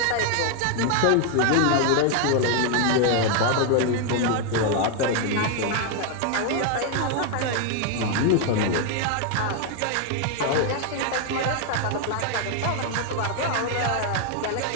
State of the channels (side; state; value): both; different; correlation 0.01